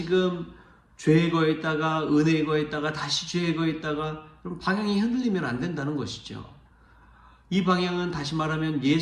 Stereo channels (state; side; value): identical; both; correlation 1.00